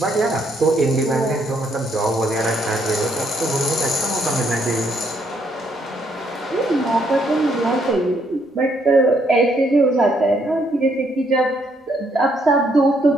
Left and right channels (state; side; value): normal; both; correlation 0.71